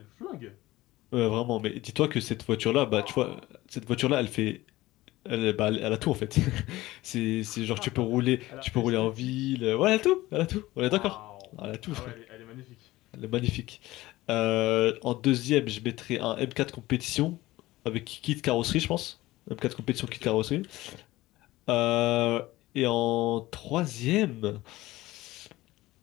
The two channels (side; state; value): right; quieter; 17.9 dB